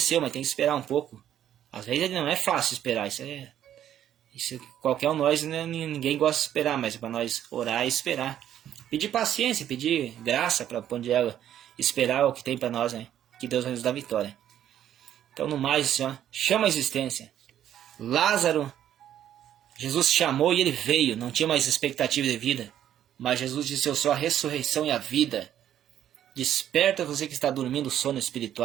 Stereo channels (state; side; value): quieter; left; 10.9 dB